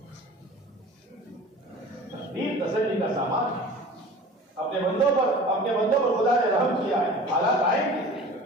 تقدیر تسلی کا سامان ہے۔ اپنے بندوں پر خدا نے رحم کیا ہے۔ حالات آئیں گے،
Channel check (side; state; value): both; normal; correlation 0.41